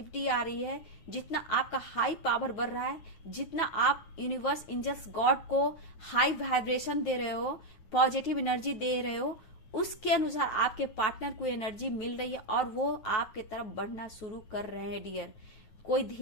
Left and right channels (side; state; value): right; late; 9.3 ms